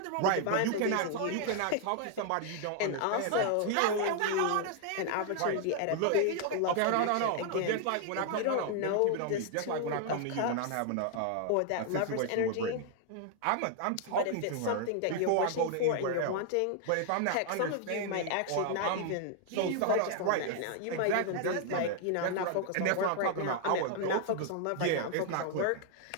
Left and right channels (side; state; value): both; different; correlation 0.00